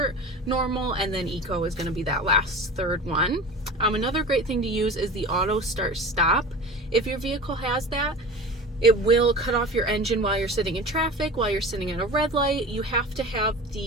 normal, and then eco is going to be that last third one. Another great thing to use is the auto start stop. If your vehicle has that, it will cut off your engine while you're sitting in traffic, while you're sitting at a red light. You have to have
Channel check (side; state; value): both; normal; correlation 0.35